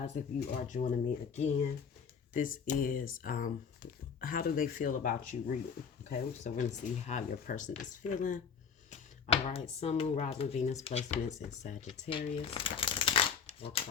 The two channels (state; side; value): quieter; right; 6.6 dB